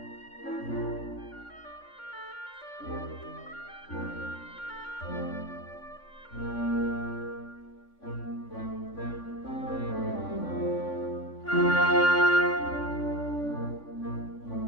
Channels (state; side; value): late; right; 3.5 ms